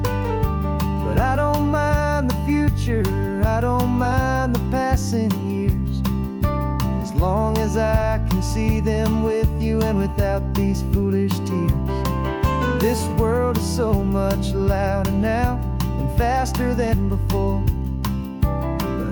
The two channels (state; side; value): identical; both; correlation 1.00